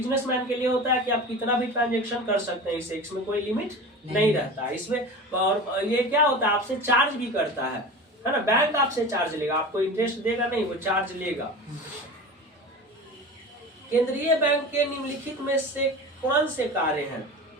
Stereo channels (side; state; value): both; normal; correlation 0.32